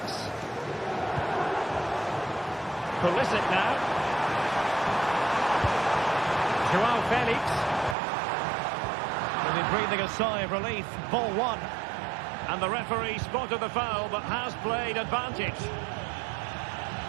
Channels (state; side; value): drops out; left; at 8.0 s